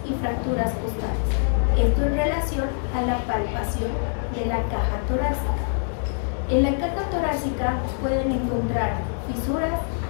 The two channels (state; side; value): silent; right; digital silence